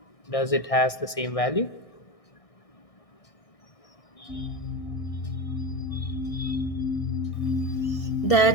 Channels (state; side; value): late; right; 1.6 ms